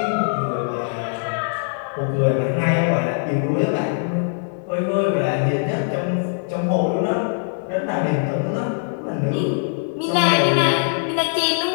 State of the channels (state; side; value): silent; right; digital silence